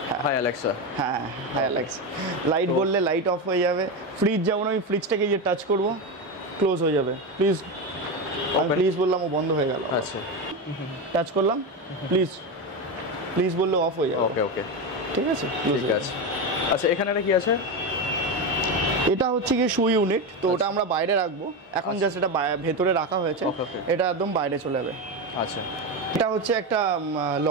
High Alexa. হ্যাঁ হ্যাঁ, অ্যালেক্সা। লাইট বললে লাইট অফ হয়ে যাবে। ফ্রিজ যেমন আমি ফ্রিজটাকে যে টাচ করব, ক্লোজ হয়ে যাবে। প্লিজ, আমি প্লিজ বললাম, ও বন্ধ হয়ে গেল। আচ্ছা, টাচ করলাম, প্লিজ প্লিজ বললে অফ হয়ে যাবে। ওকে ওকে, ঠিক আছে, ঠিক আছে। আচ্ছা, এখানে একটা কি আছে? এটা হচ্ছে কি শু ইউনিট, তো ওটা আমরা বাইরে রাখবো এখন, জাস্ট এটা ভেতরে রাখা হয়েছে। Okay, okay. এটা একদম বাইরে চলে যাবে। আচ্ছা, এটা হচ্ছে একটা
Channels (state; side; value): normal; both; correlation 0.15